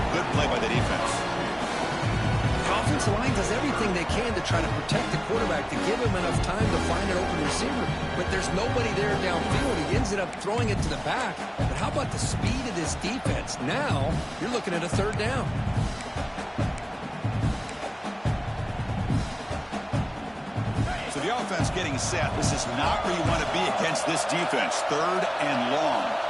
good play by the defense. The offensive line does everything they can to try to protect the quarterback, to give him enough time to find an open receiver. But there's nobody there downfield. He ends up throwing it to the back. But how about the speed of this defense? Now you're looking at a third down. So the offense getting set. This is not where you want to be against this defense. Third and long.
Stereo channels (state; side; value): identical; both; correlation 1.00